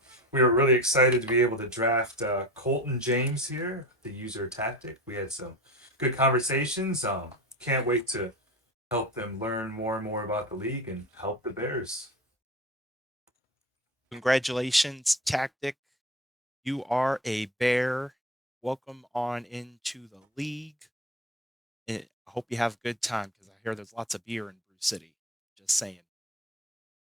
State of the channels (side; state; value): both; normal; correlation 0.30